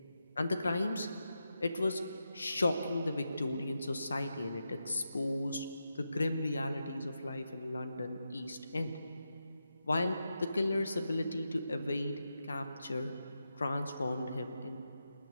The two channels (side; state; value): both; inverted; correlation -0.88